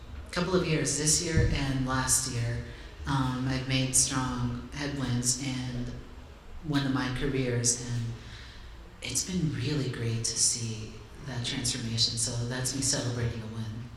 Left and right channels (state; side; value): identical; both; correlation 1.00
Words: years, this year and last year. I've made strong headwinds in one of my careers, and it's been really great to see that transformation. So that's me celebrating a win.